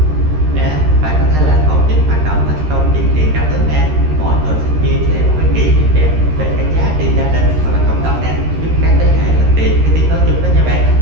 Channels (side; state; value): left; late; 13 ms